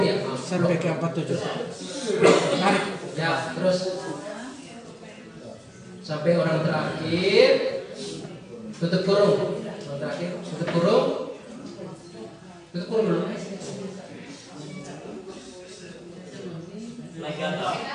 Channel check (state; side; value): identical; both; correlation 1.00